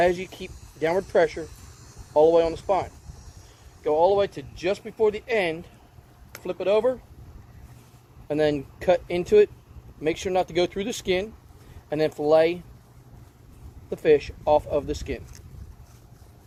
you keep downward pressure all the way on the spine. Go all the way to just before the end, flip it over, and then cut into it. Make sure not to go through the skin, and then fillet the fish off of the skin.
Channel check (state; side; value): identical; both; correlation 1.00